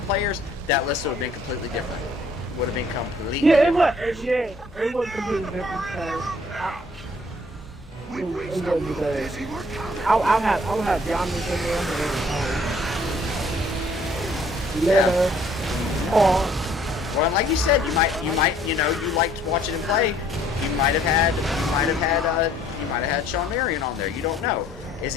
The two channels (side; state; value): both; normal; correlation 0.60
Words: players, that list would have been completely different. Would have been completely it was completely different because I'll have Giannis in there, Leonard, Paul. Well, like you said, you liked watching him play. You might have had Sean Marion on there. You don't know. Is